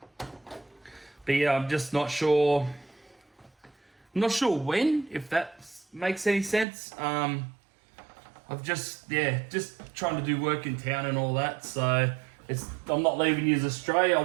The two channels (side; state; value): left; drops out; at 6.7 s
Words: But yeah, I'm just not sure. I'm not sure when, if that makes any sense. I've just trying to do work in town and all that. So I'm not leaving you astray. I